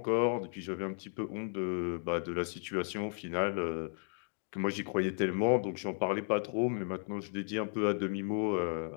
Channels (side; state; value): right; silent; 55 dB below the other